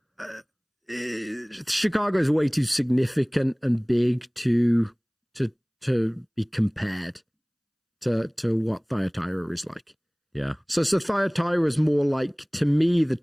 Chicago is way too significant and big to be compared to what Thyatira is like. Yeah. So Thyatira is more like, to me, the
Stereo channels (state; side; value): identical; both; correlation 1.00